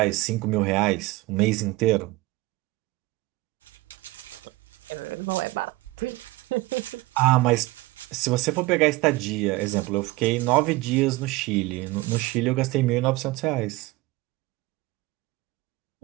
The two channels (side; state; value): left; quieter; 20.5 dB